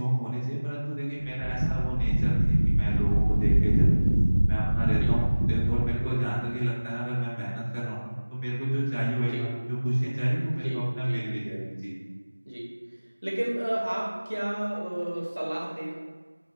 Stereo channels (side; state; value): both; inverted; correlation -1.00